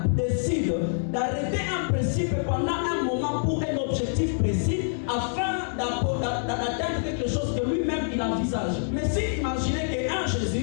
décide d'arrêter un principe pendant un moment pour un objectif précis afin d'atteindre quelque chose que lui-même il envisage. Mais si imaginez qu'un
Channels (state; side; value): silent; right; 61 dB below the other